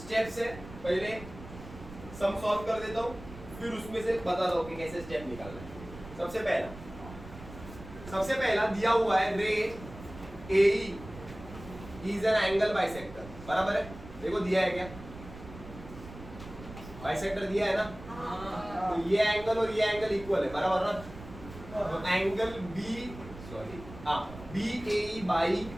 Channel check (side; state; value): right; noise; rumble, 15 dB below the sound